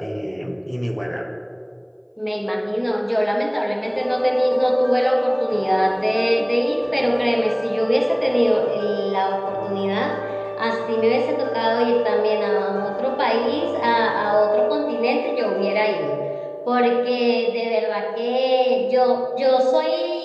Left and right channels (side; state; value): both; identical; correlation 1.00